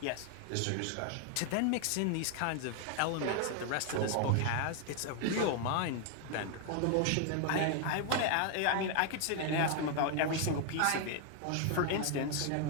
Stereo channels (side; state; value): both; different; correlation 0.01